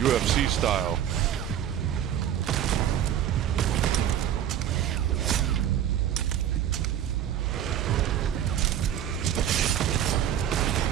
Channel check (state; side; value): quieter; left; 10.3 dB